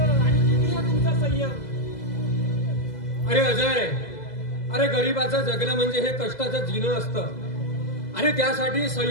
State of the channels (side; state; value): right; late; 2.0 ms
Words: आणि किती हा तुमचा संयम. अरे अजय, अरे गरीबाचं जगणं म्हणजे हे कष्टाचं जीणं असतं, आणि त्यासाठी